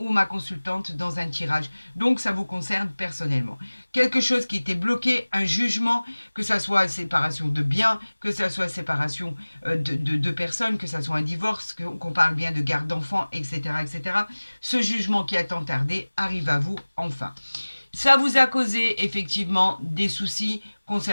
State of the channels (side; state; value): both; inverted; correlation -1.00